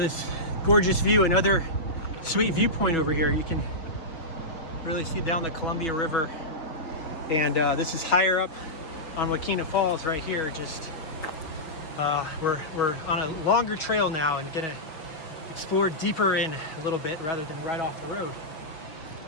gorgeous view, another sweet viewpoint over here. You can really see down the Columbia River. And this is higher up on Unnamed Falls right here. Just we're on a longer trail now and gonna explore deeper in a little bit rather than right off the road.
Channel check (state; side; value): late; right; 6.5 ms